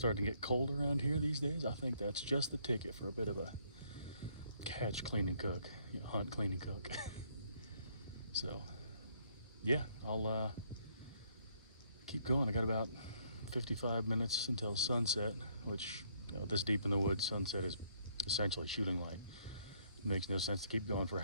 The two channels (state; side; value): inverted; both; correlation -0.67